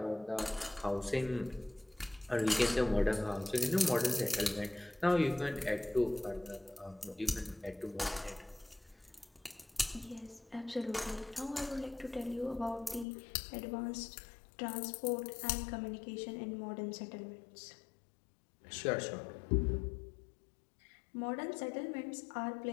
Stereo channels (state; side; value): drops out; right; at 13.1 s